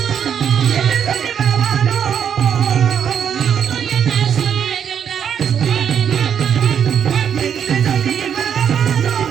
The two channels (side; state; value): left; quieter; 8.3 dB